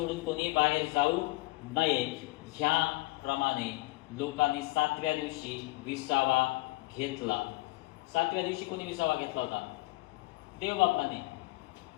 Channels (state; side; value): quieter; right; 22.0 dB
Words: कोणी बाहेर जाऊ नये. ह्याप्रमाणे लोकांनी 7व्या दिवशी विसावा घेतला. 7व्या दिवशी कोणी विसावा घेतला होता? देवबापाने.